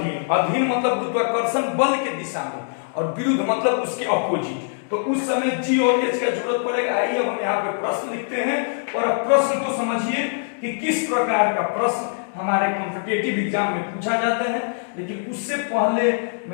मतलब गुरुत्वाकर्षण बल के दिशा में, और विरुद्ध मतलब उसके अपोजिट, तो उस समय जी और एच का जरूरत पड़ेगा। आइए हम यहाँ पे प्रश्न लिखते हैं, और अब प्रश्न को समझिए कि किस प्रकार का प्रश्न हमारे कॉम्पिटिटिव एग्जाम में पूछा जाता है। लेकिन उससे पहले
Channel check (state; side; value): silent; right; digital silence